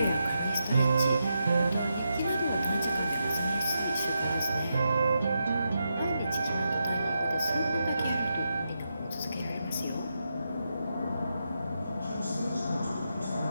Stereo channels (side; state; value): both; inverted; correlation -0.85